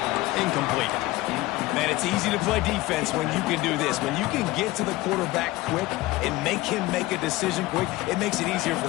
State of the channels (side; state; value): right; quieter; 19.0 dB